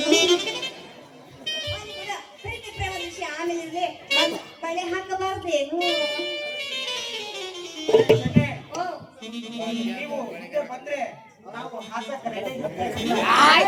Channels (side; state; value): both; identical; correlation 1.00